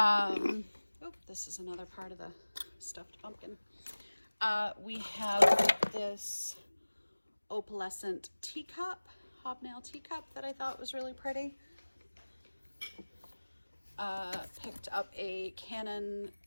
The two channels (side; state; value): both; inverted; correlation -1.00